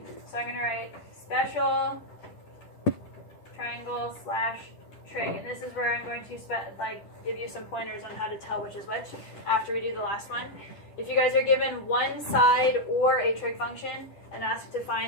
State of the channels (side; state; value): right; late; 10 ms